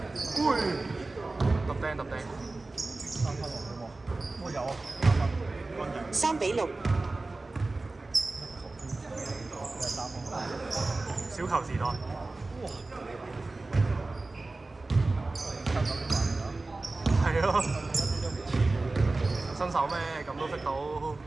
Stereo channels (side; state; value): left; quieter; 3.3 dB